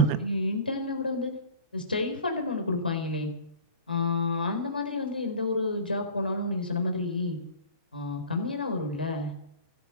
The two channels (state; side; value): inverted; both; correlation -0.41